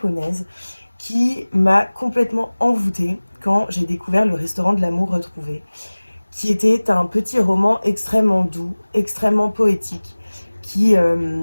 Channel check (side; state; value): both; inverted; correlation -1.00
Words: qui m'a complètement envoûtée quand j'ai découvert Le restaurant de l'amour retrouvé, qui était un petit roman extrêmement doux, extrêmement poétique, qui